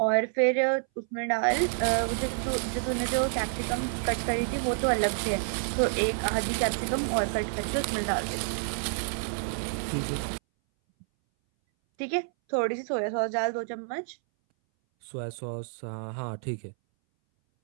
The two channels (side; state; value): left; silent; 59 dB below the other